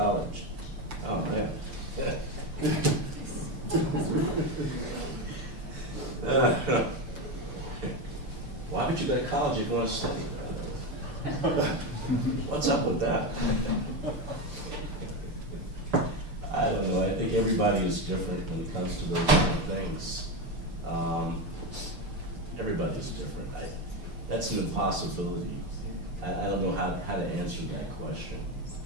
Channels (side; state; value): left; late; 6.8 ms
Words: Oh man. Why would you go to college if you want to study? What's up with that? I don't know. I think everybody is different when it comes to those kind of things. Everybody's different. That's an impossibility. I don't know how to answer that question.